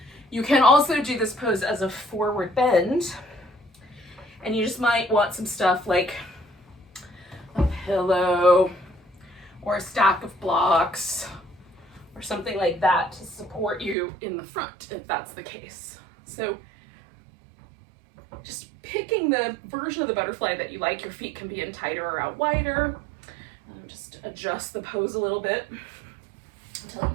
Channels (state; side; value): drops out; left; at 14.0 s